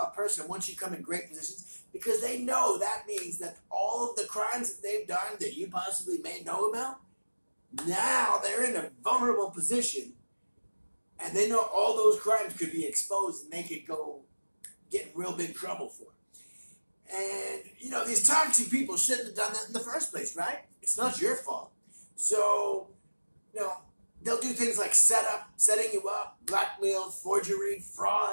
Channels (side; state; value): both; inverted; correlation -1.00